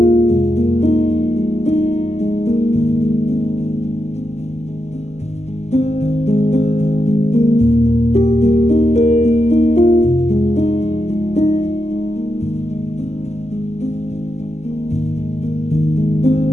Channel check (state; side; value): late; right; 0.32 ms